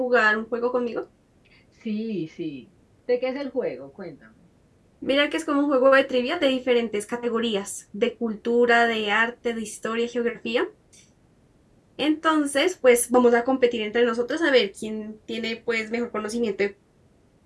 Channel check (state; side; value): identical; both; correlation 1.00